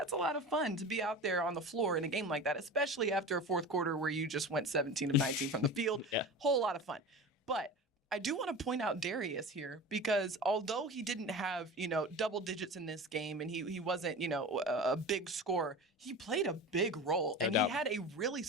a lot of fun to be out there on the floor in a game like that, especially after a fourth quarter where you just went 17 of 19 from the field. Whole lot of fun. But I do want to point out Darius here, because although he didn't have, double digits in this game, and he wasn't, a big scorer, he played a big role, and he had a really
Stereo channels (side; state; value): both; normal; correlation 0.32